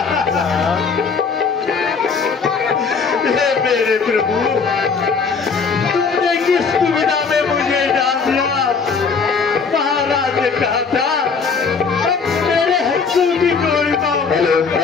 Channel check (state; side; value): quieter; right; 5.3 dB